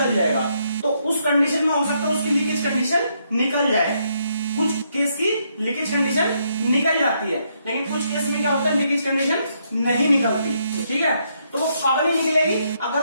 जाएगा। तो उस कंडीशन में हो सकता है उसकी लीकेज कंडीशन निकल जाए, कुछ केस की लीकेज कंडीशन निकल जाती है, लेकिन कुछ केस में क्या होता है, लीकेज कंडीशन नहीं निकलती, ठीक है। तो वो कब नहीं निकलेगी,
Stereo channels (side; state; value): both; inverted; correlation -0.75